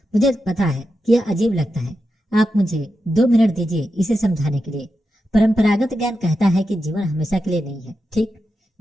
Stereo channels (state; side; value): normal; both; correlation 0.89